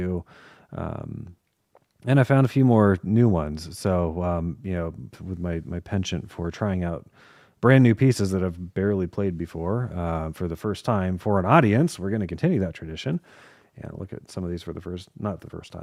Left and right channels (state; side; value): identical; both; correlation 1.00